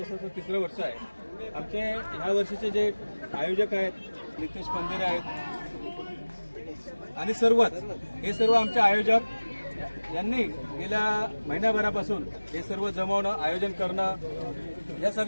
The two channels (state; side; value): inverted; both; correlation -1.00